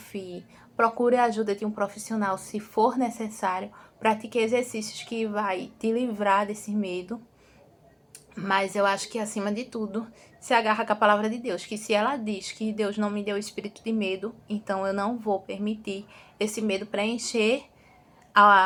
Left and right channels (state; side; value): identical; both; correlation 1.00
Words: Procure a ajuda de um profissional se for necessário. Pratique exercícios que vai te livrar desse medo. Mas eu acho que, acima de tudo, se agarra com a palavra de Deus. Que se ela diz que Deus não me deu espírito de medo, então eu não vou permitir esse medo preencher